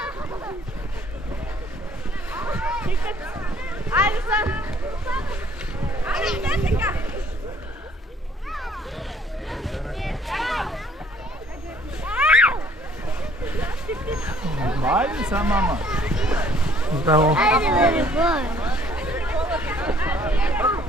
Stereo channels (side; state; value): both; normal; correlation 0.60